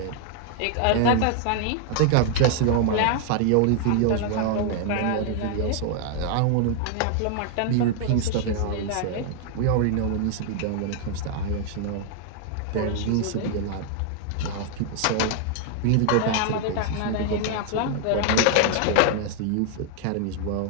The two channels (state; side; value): different; both; correlation 0.00